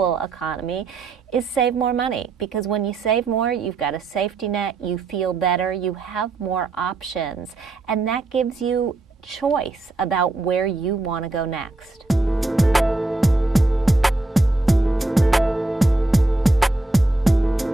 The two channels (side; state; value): left; quieter; 3.0 dB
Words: economy, is save more money. Because when you save more, you've got a safety net, you feel better, you have more options, and that gives you choice about where you want to go next.